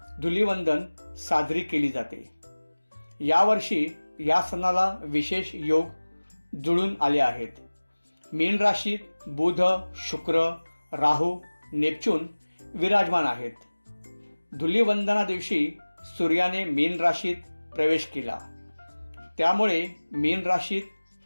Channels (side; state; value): both; inverted; correlation -1.00